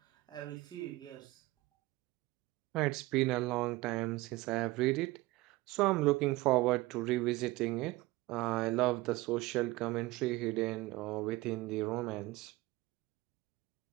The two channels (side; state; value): left; quieter; 20.2 dB